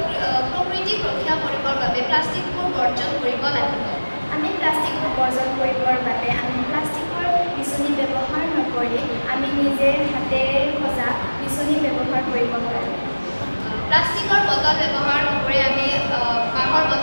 ৰক্ষা কৰিবৰ বাবে প্লাষ্টিকবোৰ বৰ্জন কৰিব লাগিব। আমি প্লাষ্টিকবোৰ বৰ্জন কৰিবৰ বাবে আমি প্লাষ্টিকৰ বিচনী ব্যৱহাৰ নকৰি আমি নিজে হাতেৰে সজা বিচনী ব্যৱহাৰ কৰিব পাৰোঁ। প্লাষ্টিকৰ বটল ব্যৱহাৰ নকৰি আমি কাঁহৰ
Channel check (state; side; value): inverted; both; correlation -1.00